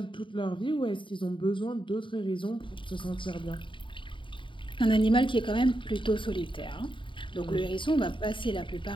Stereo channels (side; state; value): right; late; 0.24 ms